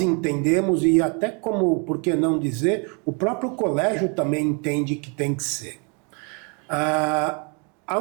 e até como, por que não dizer, o próprio colégio também entende que tem que ser.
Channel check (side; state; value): left; quieter; 35.4 dB